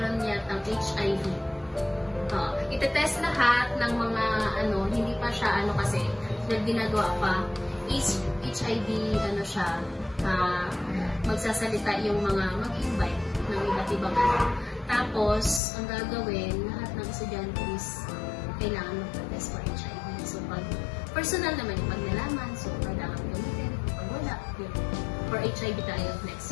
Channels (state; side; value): drops out; right; at 15.6 s